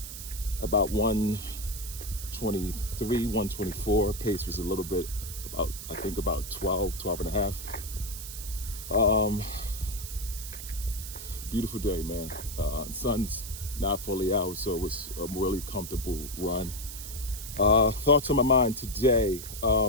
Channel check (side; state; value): right; noise; hiss, 10 dB below the sound